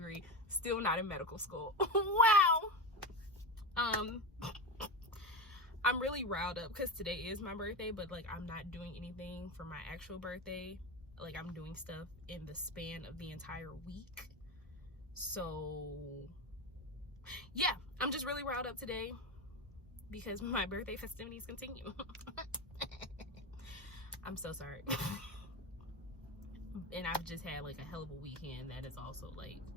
still not in medical school. Wow. I'm really riled up because today is my birthday, but like I'm not doing anything for my actual birthday. Like I'm doing stuff in the span of the entire week. So yeah, I'm just really riled up today because my birthday festivities continue. I'm so sorry. And I've just had like a hell of a weekend that is also like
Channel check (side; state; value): both; normal; correlation 0.18